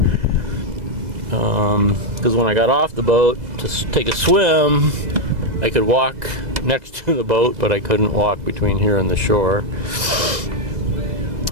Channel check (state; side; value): late; left; 2.0 ms